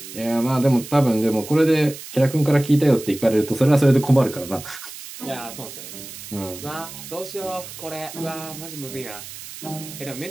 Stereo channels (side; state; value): right; noise; hiss, 13 dB below the sound